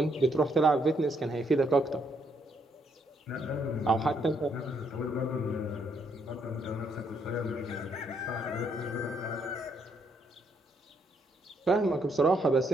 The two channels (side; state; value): both; normal; correlation 0.73